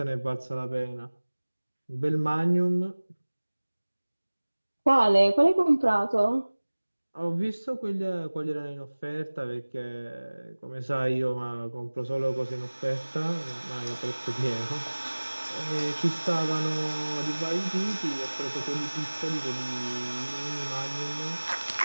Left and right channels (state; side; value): inverted; both; correlation -1.00